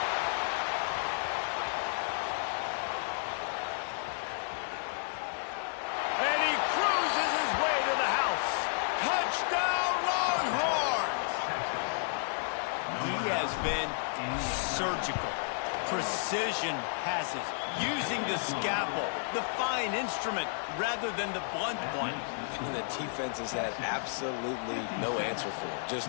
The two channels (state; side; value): silent; right; digital silence